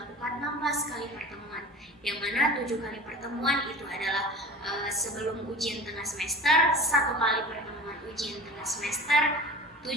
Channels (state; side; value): normal; both; correlation 0.38